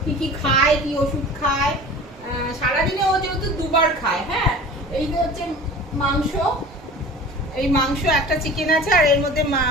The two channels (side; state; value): both; normal; correlation 0.40